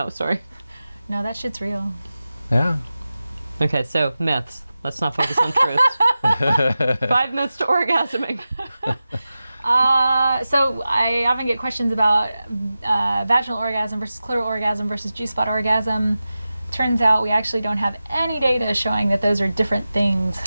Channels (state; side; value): inverted; both; correlation -0.94